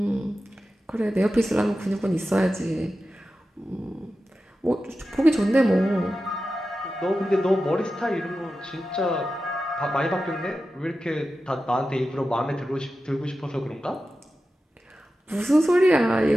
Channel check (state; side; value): normal; both; correlation 0.93